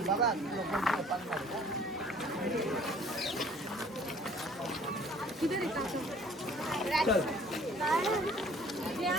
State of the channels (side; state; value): both; normal; correlation 0.54